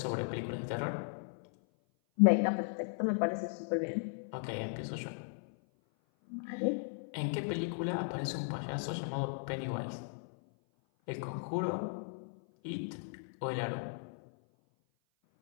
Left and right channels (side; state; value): right; silent; 54 dB below the other